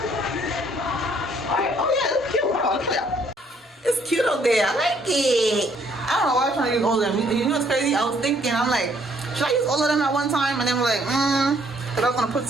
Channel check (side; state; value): both; normal; correlation 0.65